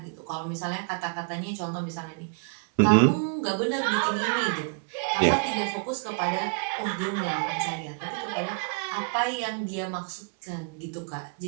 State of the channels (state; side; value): quieter; left; 38.4 dB